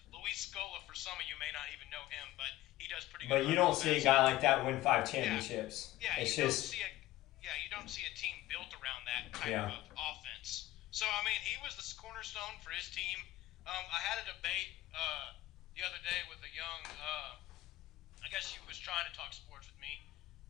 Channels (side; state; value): right; quieter; 16.3 dB